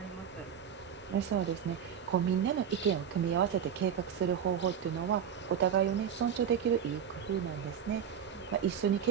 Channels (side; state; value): left; quieter; 8.3 dB